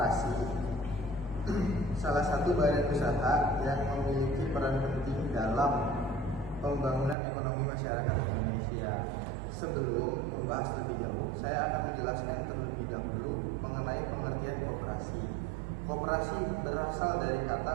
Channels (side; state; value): left; drops out; at 7.2 s